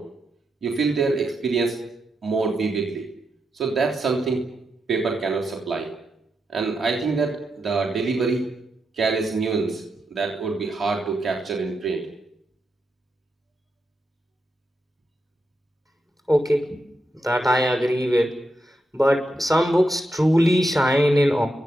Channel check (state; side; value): normal; both; correlation 0.85